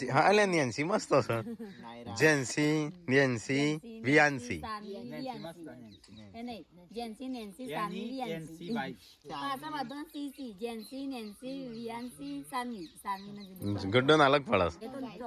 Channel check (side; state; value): both; identical; correlation 1.00